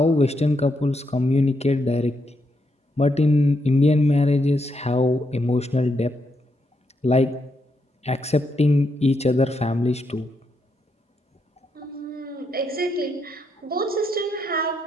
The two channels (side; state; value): both; normal; correlation 0.80